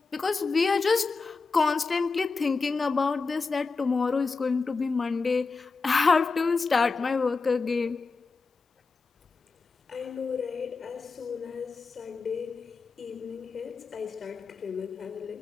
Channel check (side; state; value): right; quieter; 4.4 dB